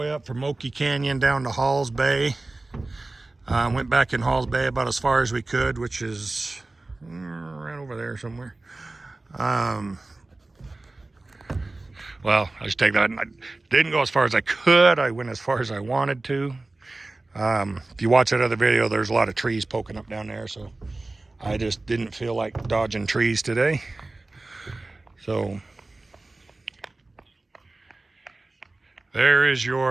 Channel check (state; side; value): quieter; left; 3.1 dB